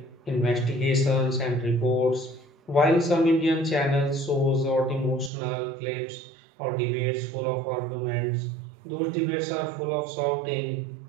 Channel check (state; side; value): drops out; left; at 5.3 s